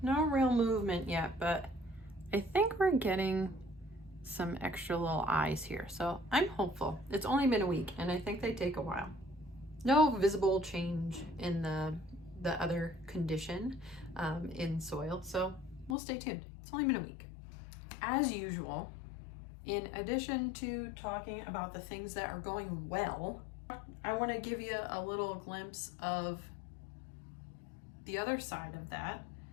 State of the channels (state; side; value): drops out; right; at 16.0 s